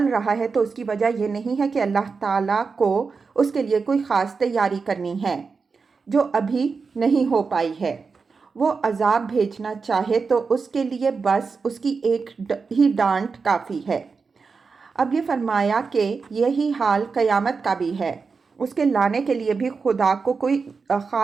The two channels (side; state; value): left; quieter; 4.9 dB